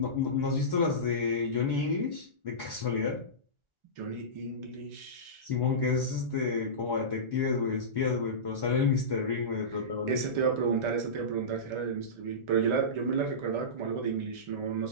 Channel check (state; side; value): late; left; 1.4 ms